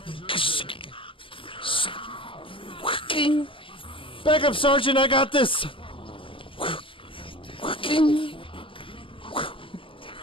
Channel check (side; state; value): right; late; 0.25 ms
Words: Back up, Sergeant, I got this!